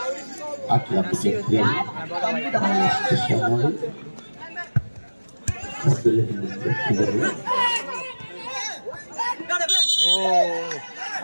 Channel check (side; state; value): both; inverted; correlation -1.00